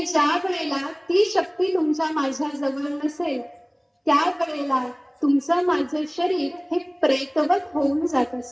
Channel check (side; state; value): both; identical; correlation 1.00